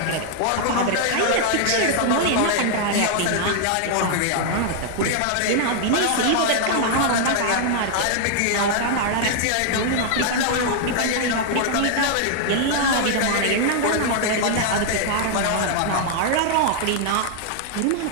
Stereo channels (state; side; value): different; both; correlation 0.00